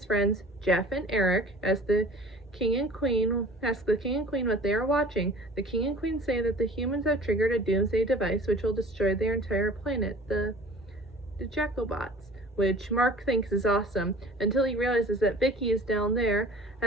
friends, Jeff and Eric, ask the King and Queen what they are watching. The King and Queen say that the humans have triggered a doomsday device which will destroy their entire planet, the Jacobots, which Mark thinks is awesome, until he realizes that Vicky is down there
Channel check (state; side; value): normal; both; correlation 0.44